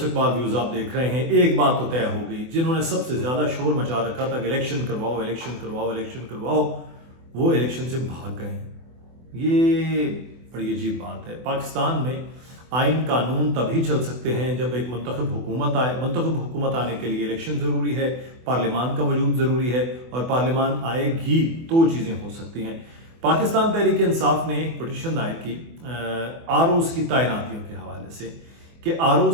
इकबाल व्यूज़ आप देख रहे हैं। एक बात तो तय हो गई, जिन्होंने सबसे ज़्यादा शोर मचा रखा था कि इलेक्शन करवाओ इलेक्शन करवाओ इलेक्शन करवाओ, वो इलेक्शन से भाग गए हैं। ये बड़ी अजीब बात है। पाकिस्तान में आइन कानून तभी चल सकते हैं जब एक मुंतखब हुकूमत आए। मुंतखब हुकूमत आने के लिए इलेक्शन ज़रूरी है, पार्लियामान का वजूद ज़रूरी है, और पार्लियामान आएगी तो चीज़ें हो सकती हैं। पाकिस्तान तहरीक इंसाफ ने एक पटिशन दायर की आरओज़ की तैनातियों के हवाले से कि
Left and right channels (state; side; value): late; left; 24 ms